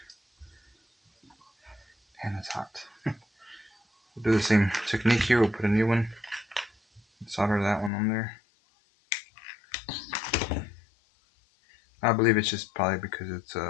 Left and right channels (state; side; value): drops out; right; at 7.9 s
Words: And it's hot. We'll do the same technique here. We'll put a new one. Solder that one on there. I believe it's just probably because it's